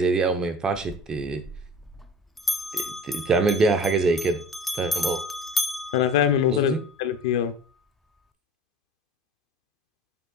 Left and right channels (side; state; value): both; normal; correlation 0.40